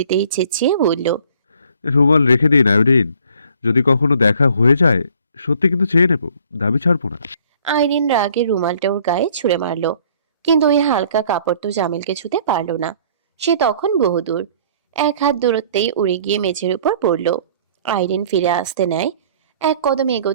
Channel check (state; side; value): inverted; both; correlation -0.56